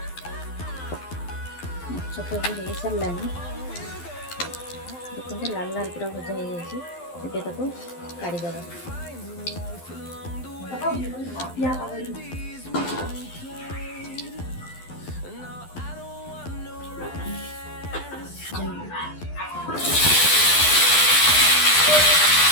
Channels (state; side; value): late; right; 12 ms